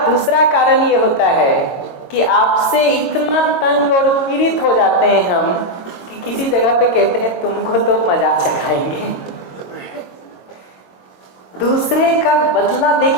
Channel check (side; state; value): right; late; 22 ms